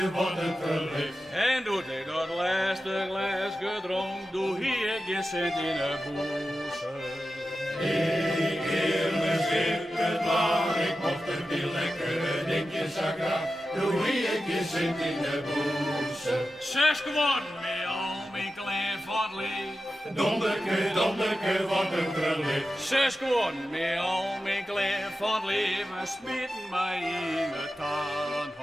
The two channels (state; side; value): normal; both; correlation 0.92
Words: wat een verlicht. En doet ik dat laatste glas gedronken, doe hier geen cent in de boezem. Ik keer me schippen, maar ik mocht er die lekkere dingetjes aan graag. Doe hier geen cent in de boezem. 6 geworden met al mijn klein van het leven. Donderke, donderke, wat een verlicht. 6 geworden met al mijn klein van het leven, smitten mij in de